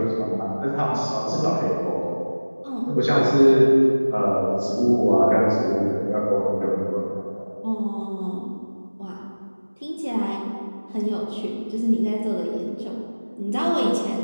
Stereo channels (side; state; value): both; inverted; correlation -1.00